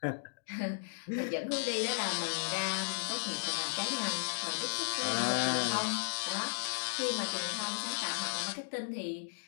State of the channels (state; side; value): silent; right; digital silence